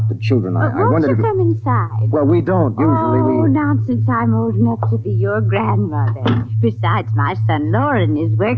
children. I Won't wondered you if... come inside? Well, we don't. Usually Oh, we... nonsense. I'm old enough to be your grandmother. Besides, my son Lauren is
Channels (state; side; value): identical; both; correlation 1.00